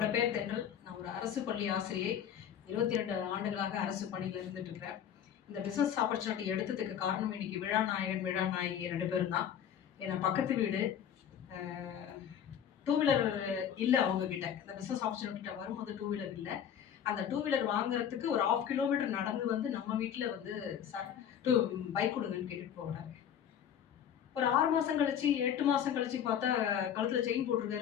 பேர் தென்றல். நான் ஒரு அரசு பள்ளி ஆசிரியை. 22 ஆண்டுகளாக அரசு பணியில் இருந்துட்டு இருக்கிறேன். இந்த பிசினஸ் ஆப்பர்ச்சுனிட்டி எடுத்ததுக்கு காரணம் இன்னைக்கு விழாநாயகன் விழாநாயகி 2 பேரும் தான். ஏன்னா பக்கத்து வீடு டூ வீலர் இல்லை அவங்க கிட்ட. இந்த பிசினஸ் ஆப்பர்ச்சுனிட்டி வரும்போது டூ வீலர் இல்லை. அந்த டூ வீலர் வாங்குறதுக்கு ஒரு 1/2 கிலோமீட்டர் நடந்து வந்து நம்ம வீட்டில் வந்து சார் பைக் கொடுங்கன்னு கேட்டுட்டு போகிறாரு. ஒரு 6 மாசம் கழிச்சு 8 மாசம் கழிச்சு பார்த்தா கழுத்துல செயின்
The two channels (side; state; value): right; quieter; 9.1 dB